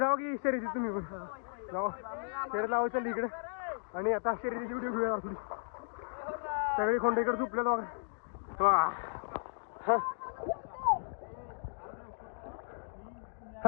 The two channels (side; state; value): right; silent; digital silence